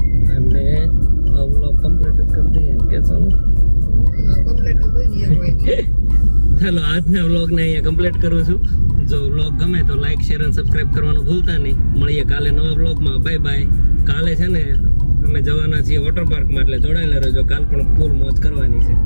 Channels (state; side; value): inverted; both; correlation -1.00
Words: અને આ વ્લોગ કમ્પ્લીટ જ કરી દઈએ ને કે સોનું? ચાલો, આજના વ્લોગને અહીંયા કમ્પ્લીટ કરું છું. જો વ્લોગ ગમે તો લાઈક, શેર અને સબસ્ક્રાઇબ કરવાનું ભૂલતા નહીં. મળીએ કાલે નવા વ્લોગમાં. Bye bye. કાલે છે ને અમે જવાના છીએ વોટર પાર્કમાં, એટલે જોડાયેલા રહેજો. કાલ પણ ફૂલ મોજ કરવાની છે.